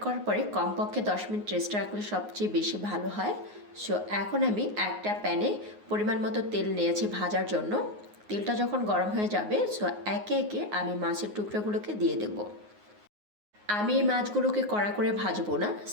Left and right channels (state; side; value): late; left; 9.6 ms